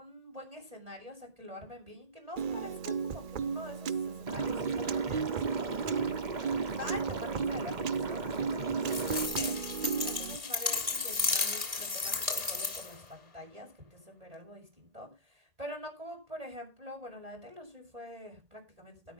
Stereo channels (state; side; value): late; left; 1.6 ms